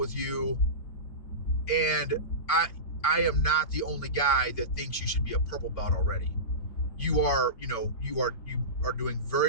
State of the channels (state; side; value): late; right; 4.6 ms